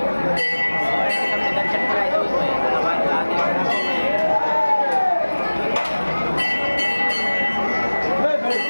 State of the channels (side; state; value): both; inverted; correlation -1.00